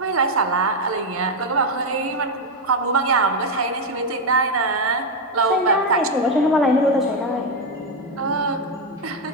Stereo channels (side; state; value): both; normal; correlation 0.05